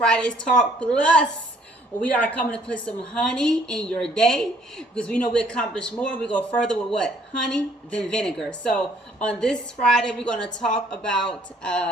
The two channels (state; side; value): normal; both; correlation 0.62